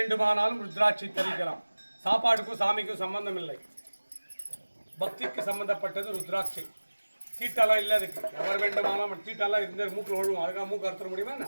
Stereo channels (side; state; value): both; inverted; correlation -1.00